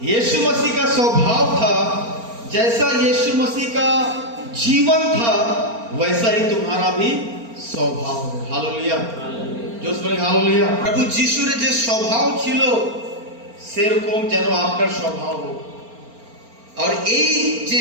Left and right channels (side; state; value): left; late; 4.3 ms